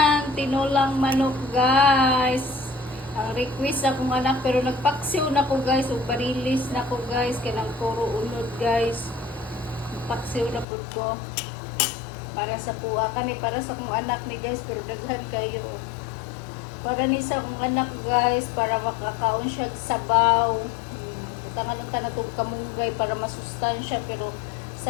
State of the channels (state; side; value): drops out; right; at 10.7 s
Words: tinulang manok guys. Ang request akong anak pero nagpaksiw na ko guys ug barilis na ko guys kanang puro unod guys. Paksiw na po ko para sa kuha kani para sa kong anak ni guys pero daghan kayo para ni sa kong anak guys para makakaon siya sabaw tangan ng tanatog kamunggay para masustansya pero